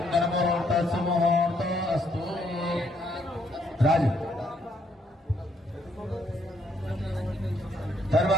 ముహూర్తో అస్తు. రాజు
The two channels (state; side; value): normal; both; correlation 0.71